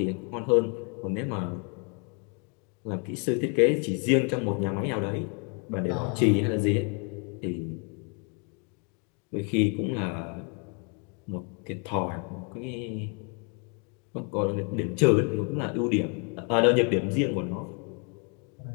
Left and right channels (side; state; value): right; quieter; 37.4 dB